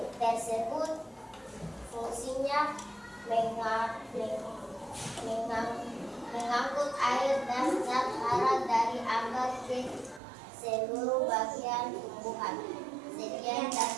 tersebut? Fungsinya mengangkut air dan zat hara dari akar ke seluruh bagian tumbuhan. Sekian dan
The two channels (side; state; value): left; drops out; at 10.2 s